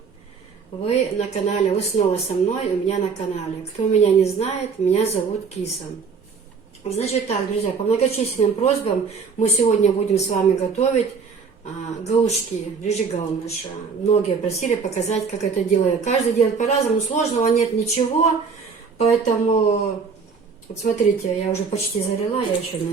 Вы на канале, вы снова со мной, у меня на канале. Кто меня не знает, меня зовут Киса. Значит так, друзья, по многочисленным просьбам мы сегодня будем с вами готовить галушки, рыжигалныша. Многие просили показать, как это делаю. Каждый делает по-разному, сложного нет ничего, поэтому, вот смотрите, я уже почти залила, я еще,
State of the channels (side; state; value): left; quieter; 5.4 dB